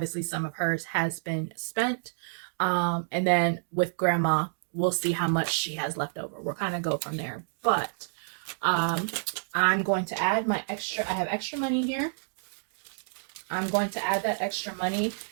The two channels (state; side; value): silent; left; digital silence